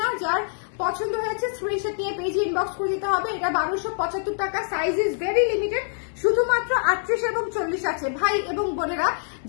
না। যার পছন্দ হয়েছে স্ক্রিনশট নিয়ে পেজে ইনবক্স করে দিতে হবে। এটা 1275 টাকা, সাইজ ইজ ভেরি লিমিটেড, শুধুমাত্র 38 এবং 40 আছে। ভাই এবং বোনেরা,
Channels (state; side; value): silent; right; digital silence